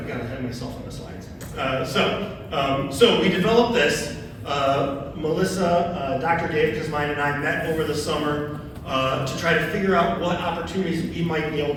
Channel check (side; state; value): both; identical; correlation 1.00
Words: gotta have myself on the slides. So we developed this. Melissa, Dr. Dave Kuzmine, and I met over the summer to try to figure out what opportunities we might be able